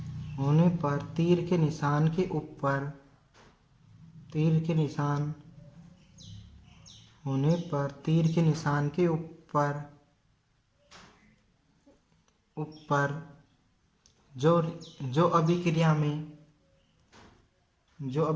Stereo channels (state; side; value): identical; both; correlation 1.00